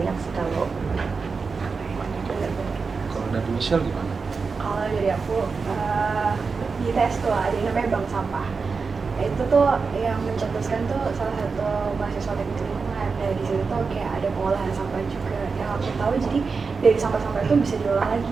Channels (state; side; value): quieter; left; 4.8 dB